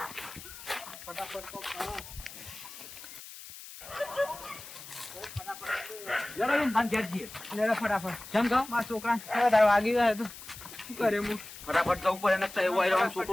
લેડો બેન, બાન ઘેર જઈએ. લેડો ફટાફટ. કેમ કહો? મારા છોકરા વધારે વાગી ગયા તો શું કરે હું ફટાફટ જવું પડે ને એવું આવી રહ્યો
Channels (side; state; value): left; noise; hiss, 14 dB below the sound